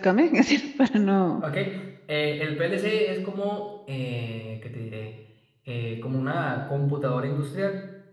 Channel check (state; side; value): identical; both; correlation 1.00